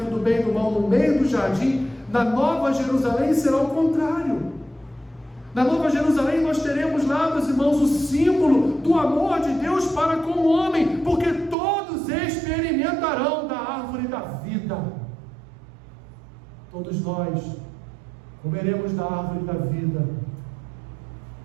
do bem e do mal no meio do jardim, na Nova Jerusalém será o contrário. Na Nova Jerusalém nós teremos lá, meus irmãos, o símbolo do amor de Deus para com o homem, porque todos experimentarão da árvore da vida. Todos nós comeremos da árvore da vida.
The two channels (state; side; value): drops out; left; at 11.6 s